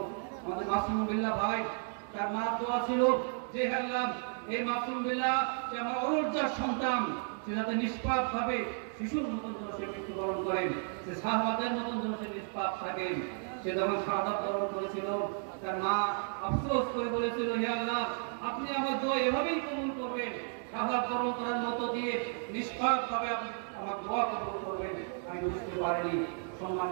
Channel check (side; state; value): left; silent; 56 dB below the other